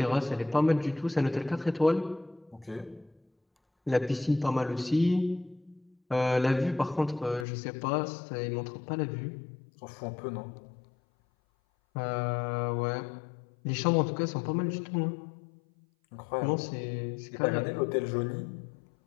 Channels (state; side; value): drops out; right; at 7.5 s